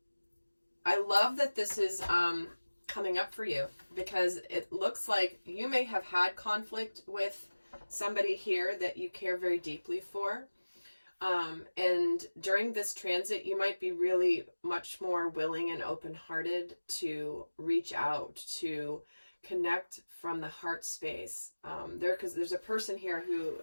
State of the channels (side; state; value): both; inverted; correlation -1.00